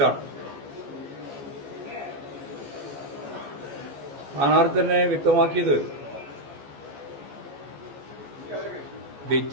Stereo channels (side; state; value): left; late; 14 ms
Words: സ്ഥാനാർത്ഥി തന്നെ വ്യക്തമാക്കിയത്